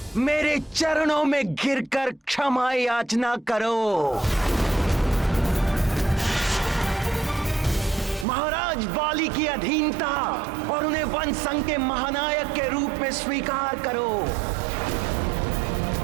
मेरे चरणों में गिरकर क्षमा याचना करो। महाराज वाली की अधीनता और उन्हें वन संघ के महानायक के रूप में स्वीकार करो।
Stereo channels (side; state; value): left; drops out; at 8.2 s